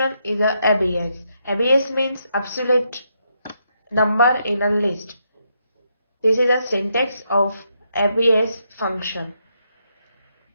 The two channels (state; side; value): inverted; both; correlation -0.79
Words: is a ABS. ABS means absolute number in a list. This is a syntax of ABS function.